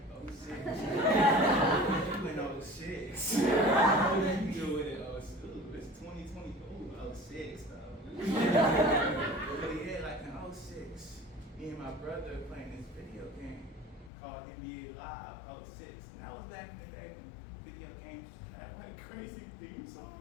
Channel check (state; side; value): drops out; right; at 14.1 s